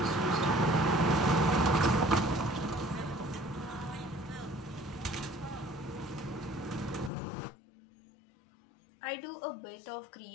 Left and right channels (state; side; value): drops out; right; at 7.1 s